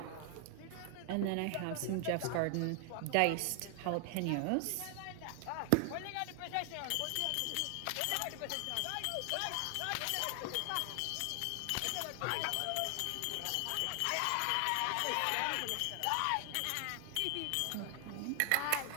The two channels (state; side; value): different; both; correlation 0.00